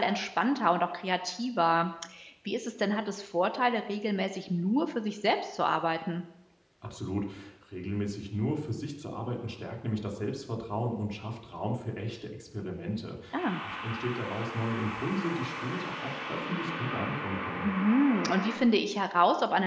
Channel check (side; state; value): both; identical; correlation 1.00